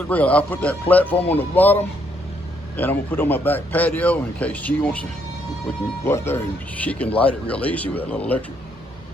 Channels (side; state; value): both; normal; correlation 0.72